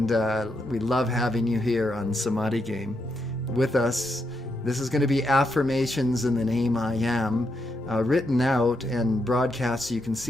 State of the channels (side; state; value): both; normal; correlation 0.81